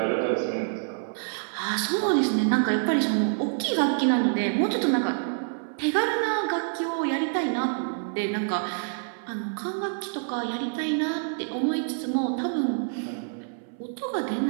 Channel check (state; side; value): silent; left; 57 dB below the other